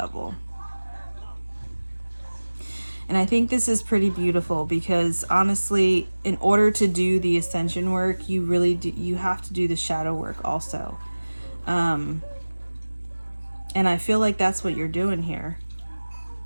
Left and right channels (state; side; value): inverted; both; correlation -1.00